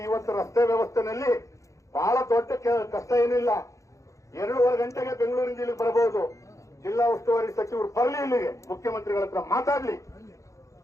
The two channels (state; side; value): late; right; 0.15 ms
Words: ಇವತ್ತು ರಸ್ತೆ ವ್ಯವಸ್ಥೆನಲ್ಲಿ ಬಹಳ ದೊಡ್ಡ ಕಷ್ಟ ಏನಿಲ್ಲ. 2:30 ಗಂಟೆಗೆ ಬೆಂಗಳೂರಿನ ಇಲ್ಲಿಗೆ ಬರಬಹುದು. ಜಿಲ್ಲಾ ಉಸ್ತುವಾರಿ ಸಚಿವರು ಬರಲಿ, ಇಲ್ಲಿಗೆ ಮುಖ್ಯಮಂತ್ರಿಗಳ ಹತ್ರ ಮಾತಾಡ್ಲಿ,